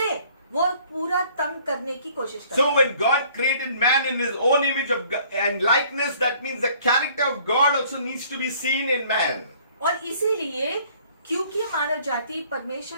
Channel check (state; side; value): inverted; both; correlation -0.57